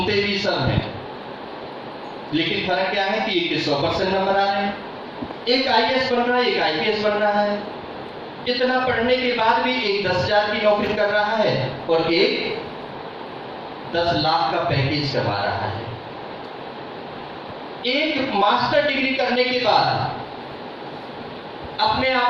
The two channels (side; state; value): both; identical; correlation 1.00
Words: भी सब हैं, लेकिन फर्क क्या है कि एक 100% नंबर आ रहे हैं, एक IAS बन रहा है, एक IPS बन रहा है। इतना पढ़ने के बाद भी एक 10,000 की नौकरी कर रहा है और एक 10 लाख का पैकेज कमा रहा है। एक मास्टर डिग्री करने के बाद अपने